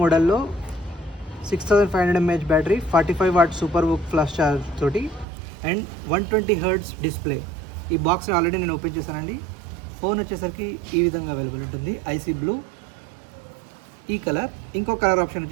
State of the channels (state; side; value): drops out; left; at 5.2 s